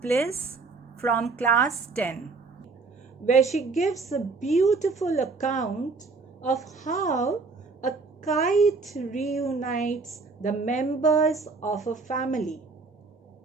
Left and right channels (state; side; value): quieter; left; 4.2 dB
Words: Bliss from Class 10, where she gives a beautiful account of how a kite reunites the members of a family.